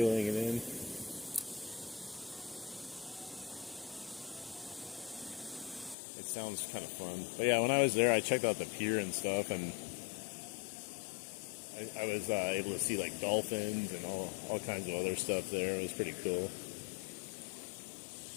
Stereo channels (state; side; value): drops out; right; at 6.0 s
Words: it in. It sounds kind of fun. But yeah, when I was there, I checked out the pier and stuff, and I was able to see like dolphins and all kinds of other stuff there. It was pretty cool.